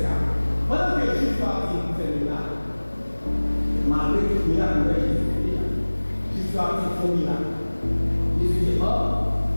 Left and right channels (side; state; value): both; inverted; correlation -1.00